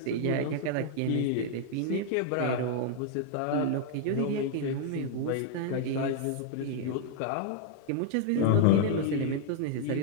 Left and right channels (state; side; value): different; both; correlation -0.01